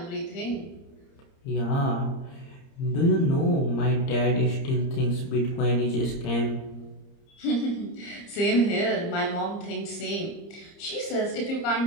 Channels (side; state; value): right; late; 30 ms